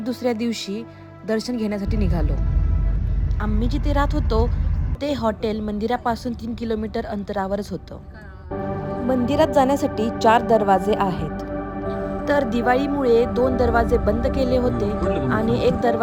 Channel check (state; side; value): identical; both; correlation 1.00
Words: दुसऱ्या दिवशी दर्शन घेण्यासाठी निघालो. आम्ही जिथे राहत होतो ते हॉटेल मंदिरापासून 3 किलोमीटर अंतरावरच होतं. मंदिरात जाण्यासाठी 4 दरवाजे आहेत. तर दिवाळीमुळे 2 दरवाजे बंद केले होते आणि एक